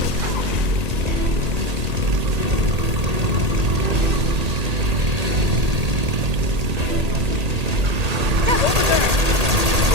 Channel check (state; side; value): late; left; 1.8 ms